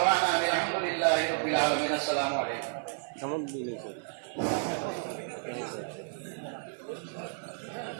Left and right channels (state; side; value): silent; left; digital silence